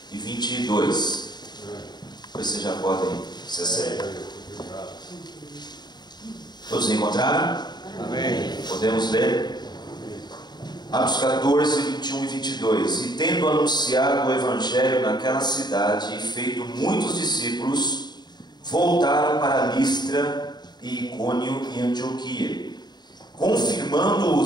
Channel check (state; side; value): late; right; 0.21 ms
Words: e 22. Vocês já podem se acertar. Todos encontraram? Amém. Podemos ler? Atos 14, 21 e 22. E tendo anunciado o Evangelho naquela cidade e feito muitos discípulos, voltaram para Listra e Icônio e Antioquia, confirmando